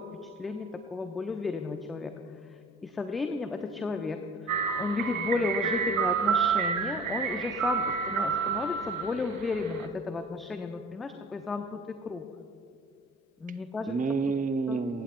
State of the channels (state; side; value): normal; both; correlation 0.47